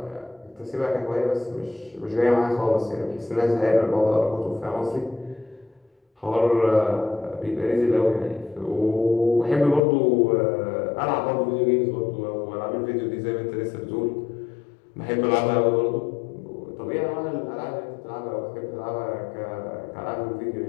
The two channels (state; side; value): drops out; right; at 9.8 s